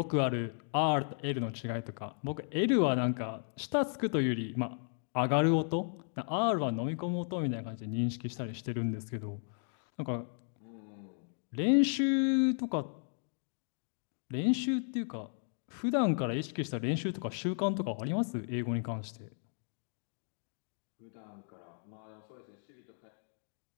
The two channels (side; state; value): right; silent; 55 dB below the other